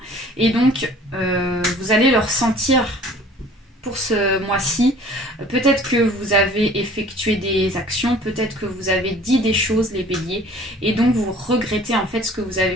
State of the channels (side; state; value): both; normal; correlation 0.50